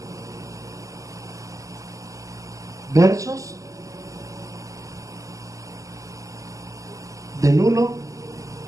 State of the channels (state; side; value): late; left; 0.16 ms